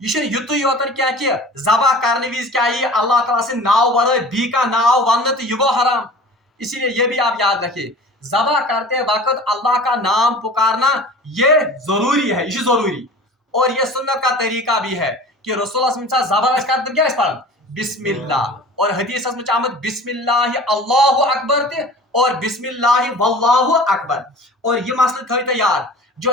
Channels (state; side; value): normal; both; correlation 0.41